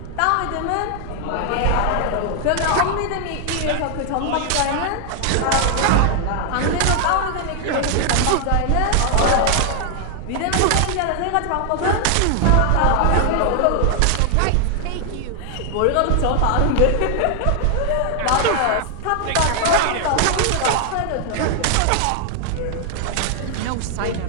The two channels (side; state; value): both; different; correlation 0.00